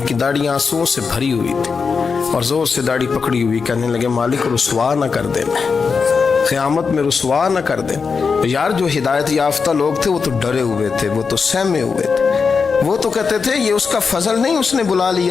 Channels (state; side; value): quieter; right; 5.3 dB